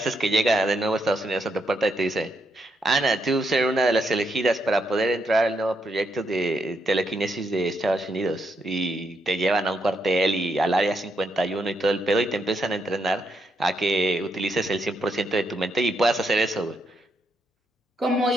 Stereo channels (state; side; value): normal; both; correlation 0.78